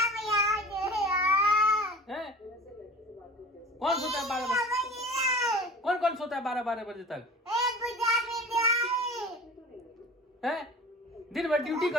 है? कौन सोता है 12 बजे? कौन कौन सोता है 12 बजे तक? है? दिन भर ड्यूटी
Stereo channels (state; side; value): normal; both; correlation 0.40